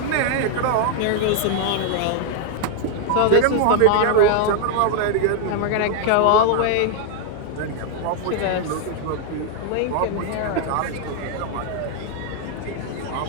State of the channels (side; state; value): both; different; correlation 0.00